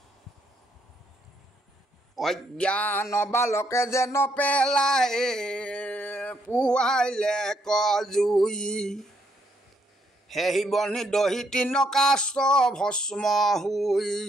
অজ্ঞান বালকে যেন পেলাই পুৱাইলে কজুই সেই বনি দহি তিন কাষ্ট ভস্ম হুই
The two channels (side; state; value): both; normal; correlation 0.73